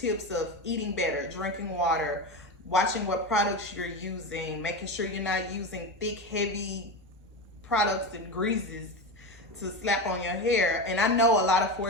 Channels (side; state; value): both; normal; correlation 0.21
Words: of eating better, drinking water, watching what products you're using, making sure you're not using thick, heavy products and greases to slap on your hair. And I know a lot of